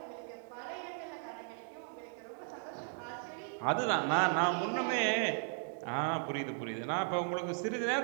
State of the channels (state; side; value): silent; left; 54 dB below the other